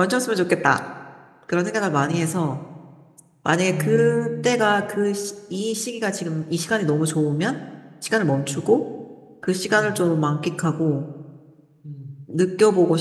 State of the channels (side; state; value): both; identical; correlation 1.00